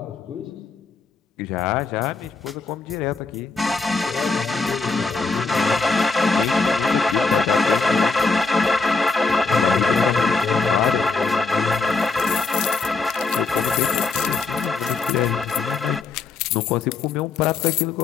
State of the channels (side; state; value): right; quieter; 4.2 dB